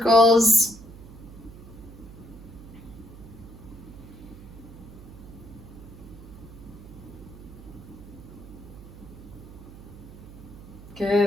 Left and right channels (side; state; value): right; noise; hum, 16 dB below the sound